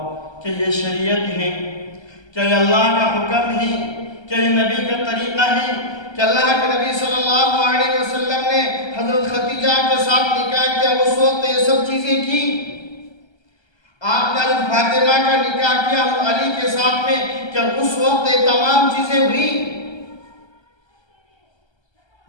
کہ یہ شریعت ہے؟ کیا یہ اللہ کا حکم ہے؟ کیا یہ نبی کا طریقہ ہے؟ کہ اللہ کے نبی صلی اللہ علیہ وسلم نے حضرت خدیجہ کے ساتھ نکاح کیا، اس وقت یہ سب چیزیں کی؟ آپ کا حضرت فاطمہ کا نکاح کیا علی کے ساتھ میں، کیا اس وقت یہ تمام چیزیں ہوئی؟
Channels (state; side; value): late; right; 1.3 ms